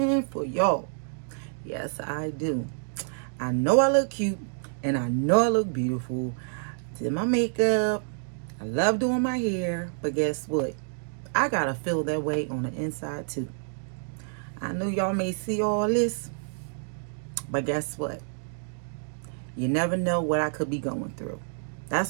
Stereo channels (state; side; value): silent; left; digital silence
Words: for y'all. Yes, I do. I know I look cute and I know I look beautiful. Did my makeup. I love doing my hair, but guess what? I gotta feel that way on the inside too. I know y'all may see all this, but guess what? You never know what I could be going through.